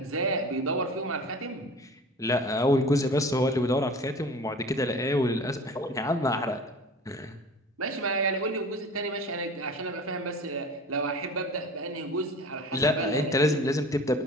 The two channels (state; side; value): normal; both; correlation 0.40